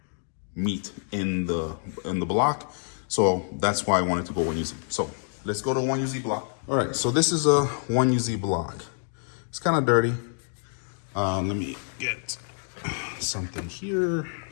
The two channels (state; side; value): silent; right; digital silence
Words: meat in the block. So that's why I wanted to go 1UZ. So let's go to 1UZ block. All right, so this is a 1UZ block. It's kind of dirty. Let me get something here